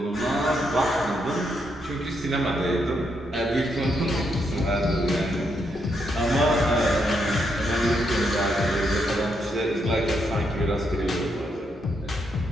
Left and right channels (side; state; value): both; normal; correlation 0.78